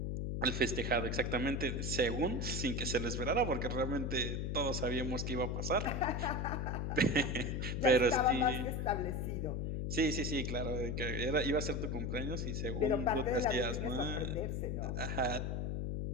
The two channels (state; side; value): noise; left; hum, 1 dB below the sound